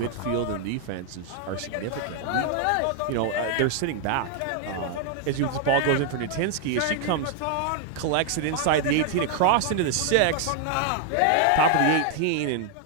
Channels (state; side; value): different; both; correlation 0.00